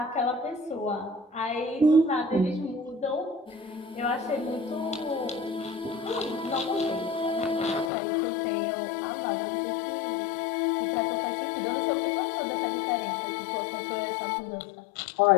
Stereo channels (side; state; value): right; drops out; at 7.9 s